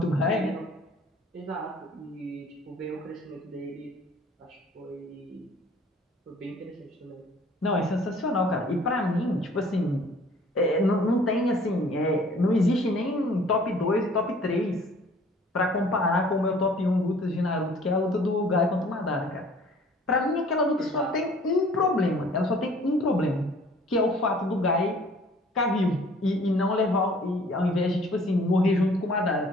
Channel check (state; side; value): normal; both; correlation 0.53